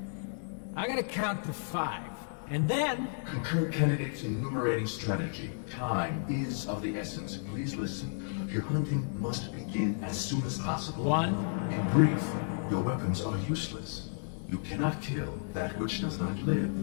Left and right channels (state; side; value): silent; right; 56 dB below the other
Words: I gotta count to 5. And then... Concur candidates enumerating strategy. Time is of the essence. Please listen. Your hunting must begin as soon as possible. 1. In brief, your weapons are useless. You cannot kill that which does not live.